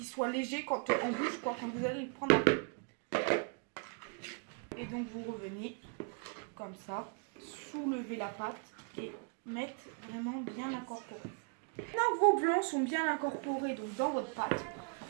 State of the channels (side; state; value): left; quieter; 35.6 dB